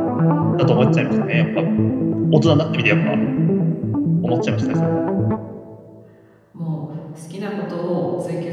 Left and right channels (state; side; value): identical; both; correlation 1.00